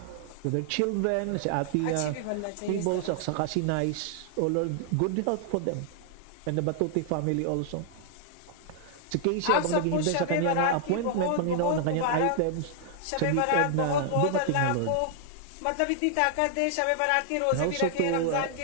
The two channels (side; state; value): both; different; correlation -0.01